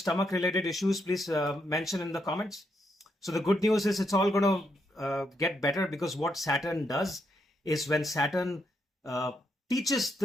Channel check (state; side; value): normal; both; correlation 0.79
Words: issues, please mention in the comments. So the good news is it's all going to get better, because what Saturn does is, when Saturn teaches